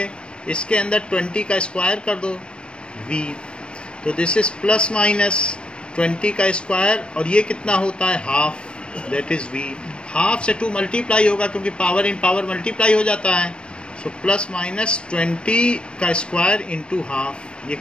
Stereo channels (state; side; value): late; right; 0.057 ms